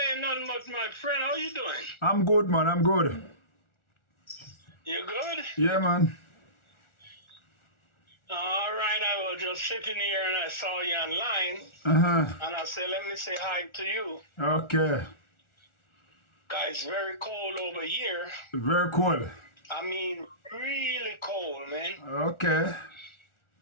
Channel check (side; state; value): right; late; 1.4 ms